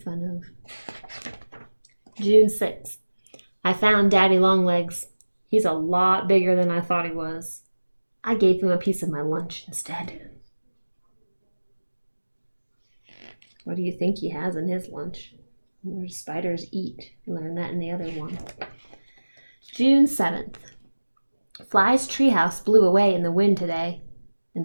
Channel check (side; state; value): both; inverted; correlation -1.00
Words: fun of. June 6th. I found Daddy Longlegs. He's a lot bigger than I thought he was. I gave him a piece of my lunch instead. What do you think he has in his lunch? Where do spiders eat? Learn that in the other one. June 7th. Fly's treehouse blew away in the wind today,